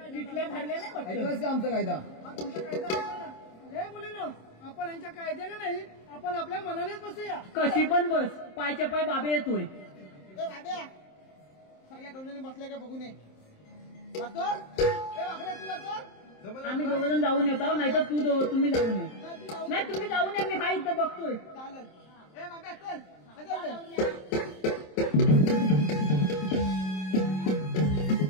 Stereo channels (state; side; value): late; right; 27 ms